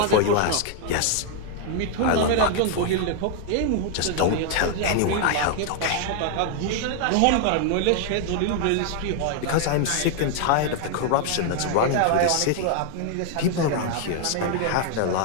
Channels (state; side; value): different; both; correlation 0.00